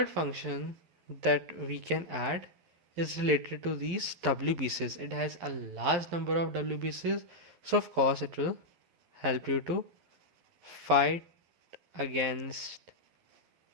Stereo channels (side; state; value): left; late; 11 ms